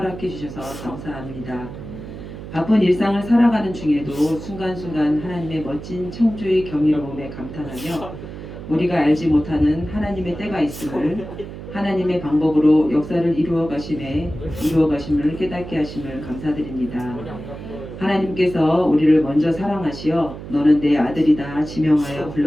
주셔서 감사합니다. 바쁜 일상을 살아가는 중에도 순간순간 하나님의 멋진 창조의 경이로움에 감탄하며 우리가 알지 못하는 하나님의 때가 있음을, 하나님의 방법으로 역사를 이루어 가심을 깨닫게 하심을 감사드립니다. 하나님께서 우리를 먼저 사랑하시어 너는 내 아들이다 지명하여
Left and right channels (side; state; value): right; noise; hum, 11 dB below the sound